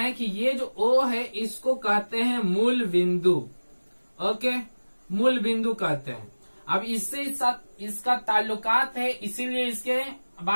कि ये जो ओ है इसको कहते हैं मूल बिंदु। ओके, मूल बिंदु कहते हैं। अब इससे इसका ताल्लुकात है, इसीलिए इसके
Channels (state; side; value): inverted; both; correlation -1.00